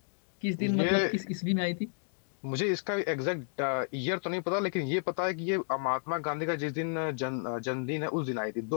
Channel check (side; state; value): right; silent; digital silence